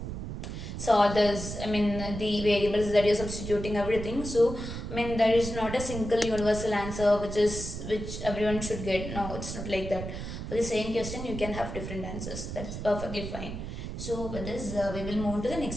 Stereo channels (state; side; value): noise; right; rumble, 7 dB below the sound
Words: solve this. I mean, the variables that you're substituting, everything. So I mean, there is not a single universal answer which everyone should get. No, it's not like that. For the same question, you can have different answers. That's perfectly fine. So with this, we will move to the